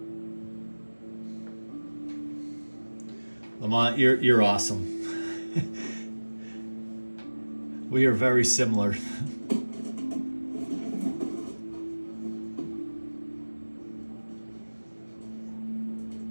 Lamont, you're awesome. We are very similar.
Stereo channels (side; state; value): both; inverted; correlation -1.00